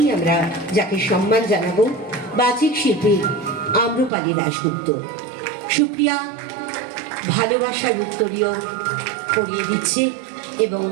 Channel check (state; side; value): drops out; left; at 4.1 s